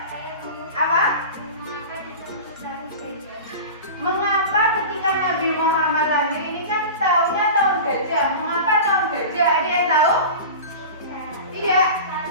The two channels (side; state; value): both; inverted; correlation -0.32